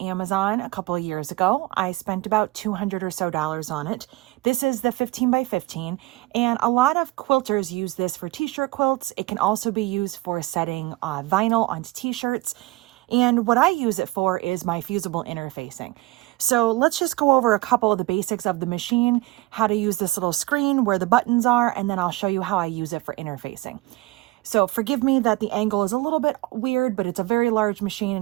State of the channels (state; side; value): quieter; left; 20.0 dB